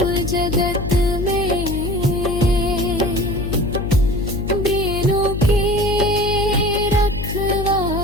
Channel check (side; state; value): left; noise; hum, 5 dB below the sound